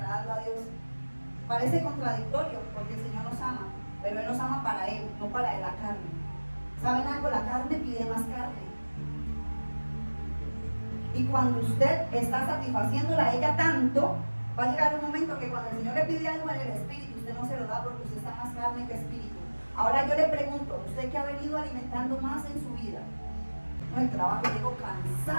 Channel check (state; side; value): inverted; both; correlation -1.00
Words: a Dios. Parece contradictorio porque el Señor nos ama, pero Él nos ama para Él, no para la carne. ¿Saben algo? La carne pide más carne. Y cuando usted está satisfaciéndola a ella tanto, va a llegar un momento que cuando el Señor le pide algo en el Espíritu, usted no se lo da porque usted está más carne que espíritu. Ahora yo le pregunto, usted que ha venido alimentando más en su vida, no, el trabajo, llego